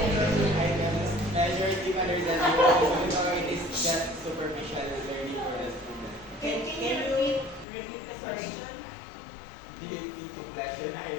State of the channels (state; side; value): drops out; right; at 7.7 s